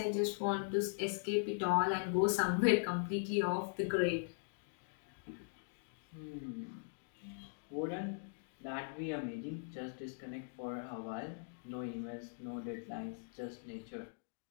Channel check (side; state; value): right; silent; digital silence